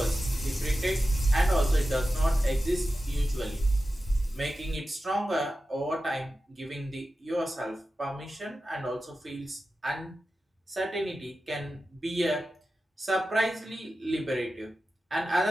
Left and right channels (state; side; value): normal; both; correlation 0.93